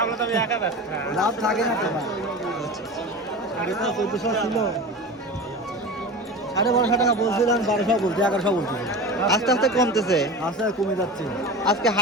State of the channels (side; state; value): both; normal; correlation 0.30